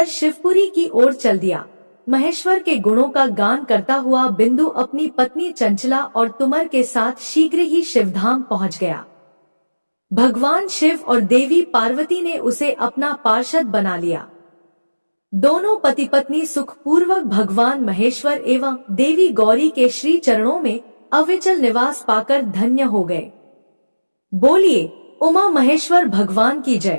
शिवपुरी की ओर चल दिया। महेश्वर के गुणों का गान करता हुआ बिंदु अपनी पत्नी चंचला और तुमर के साथ शीघ्र ही शिवधाम पहुंच गया। भगवान शिव और देवी पार्वती ने उसे अपना पार्षद बना लिया। दोनों पति पत्नी सुखपूर्वक भगवान महेश्वर एवं देवी गौरी के श्री चरणों में अविचल निवास पाकर धन्य हो गए। बोलिए उमा महेश्वर भगवान की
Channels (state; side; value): inverted; both; correlation -1.00